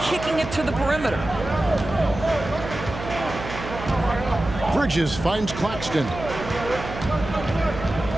kicking it to the perimeter. Bridges finds Claxton.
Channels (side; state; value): right; noise; hum, 9 dB below the sound